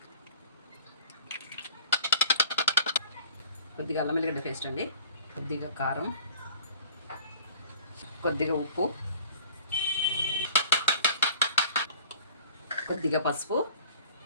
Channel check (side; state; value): both; inverted; correlation -0.48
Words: కొద్దిగా అల్లం వెల్లిగడ్డ పేస్ట్ అండి, కొద్దిగా కారం, కొద్దిగా ఉప్పు, కొద్దిగా పసుపు,